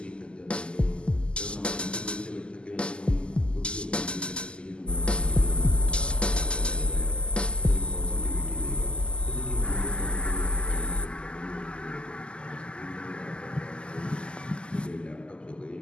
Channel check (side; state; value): right; late; 0.051 ms